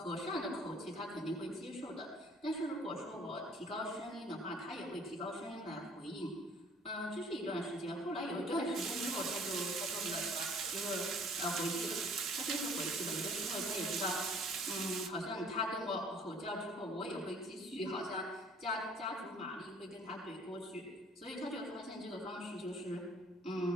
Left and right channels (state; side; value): normal; both; correlation 0.55